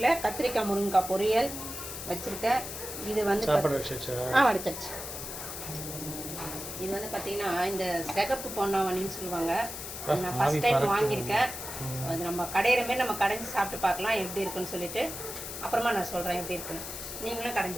கத்திரிக்காய் முருங்கைக்காய் பொரியல் வச்சுருக்கேன். இது வந்து வடிச்சாச்சு. இது வந்து பார்த்தீங்கன்னா இந்த சிகப்பு பொன்னாவணின்னு சொல்லுவாங்க. நான் ஃபஸ்ட் டைம் வாங்கியிருக்கேன். அது நம்ம கடையிற மாரி நம்ம கடைஞ்சி சாப்பிட்டு பார்க்கலாம் எப்படி இருக்குன்னு சொல்லிட்டு அப்புறமா நான் சொல்கிறேன் எப்படி இருக்குன்னு. நீங்களும்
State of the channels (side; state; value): left; noise; hiss, 8 dB below the sound